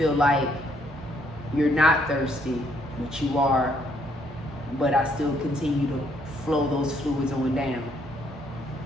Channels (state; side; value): normal; both; correlation 0.70